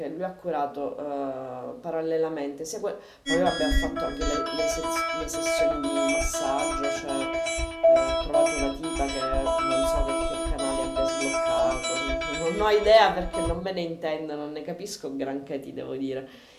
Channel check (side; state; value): both; identical; correlation 1.00